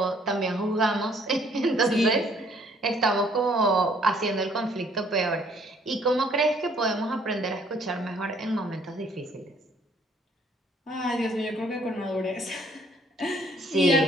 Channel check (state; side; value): normal; both; correlation 0.63